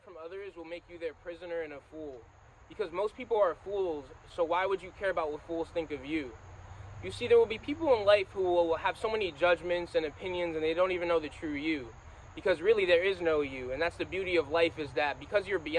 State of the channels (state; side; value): identical; both; correlation 1.00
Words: from others will make you their prisoner and a fool. Because most people are fools, so why would you care about what fools think of you? You see, there will be people in life who will have so many judgments and opinions and they don't even know the true you. Because really there is no you, and that's the beauty of life, is that because you're